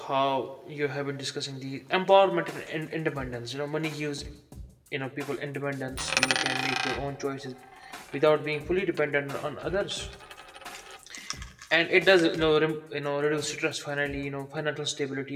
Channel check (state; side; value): identical; both; correlation 1.00